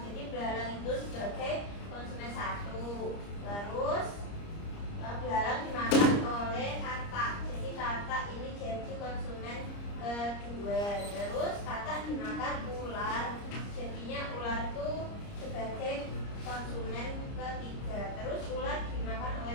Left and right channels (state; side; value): late; right; 30 ms